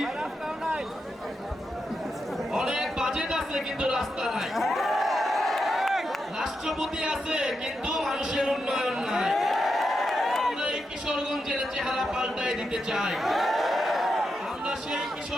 অনেক বাজেট আছে কিন্তু রাস্তা নাই, রাষ্ট্রপতি আছে কিন্তু মানুষের উন্নয়ন নাই। আমরা এই কিশোরগঞ্জের চেহারা পাল্টায় দিতে চাই। আমরা সেই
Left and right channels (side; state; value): both; normal; correlation 0.85